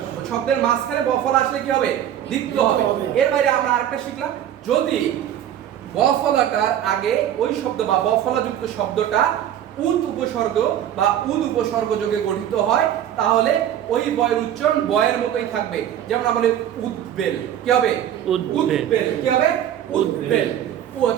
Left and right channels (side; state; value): left; quieter; 10.7 dB